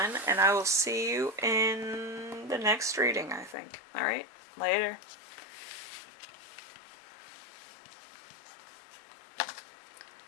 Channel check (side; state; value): right; drops out; at 3.6 s